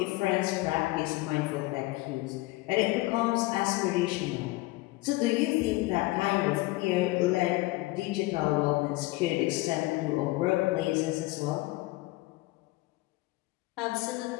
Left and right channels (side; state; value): right; quieter; 20.5 dB